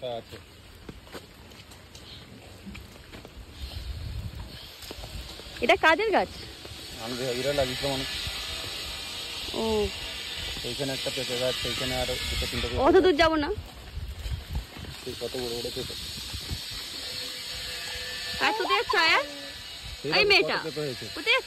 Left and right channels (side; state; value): both; identical; correlation 1.00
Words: আছে। এটা কাদের গাছ? আমি এরা লাগিয়েছিলাম অনেক। ও, এইখানে একটা পেঁপে গাছ, এইখানে আর দুটো তিনটা। অত দূর যাবো না। কত বড় বড় পেঁপে। আর কোথায় যাচ্ছ আয়া? এই মেয়েটা কোথায়